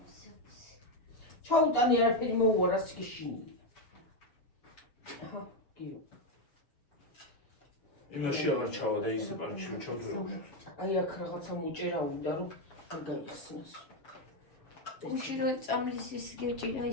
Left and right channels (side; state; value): right; late; 7.4 ms